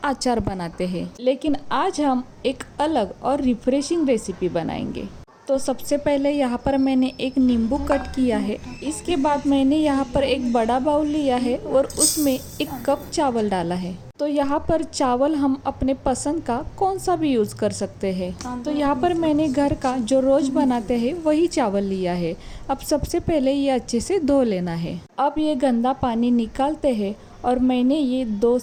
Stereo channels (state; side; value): identical; both; correlation 1.00